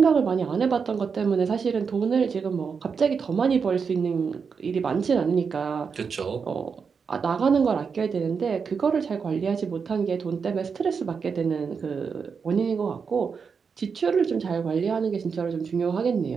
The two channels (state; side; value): quieter; left; 5.8 dB